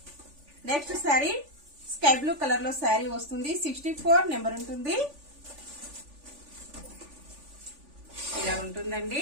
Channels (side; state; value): left; late; 3.4 ms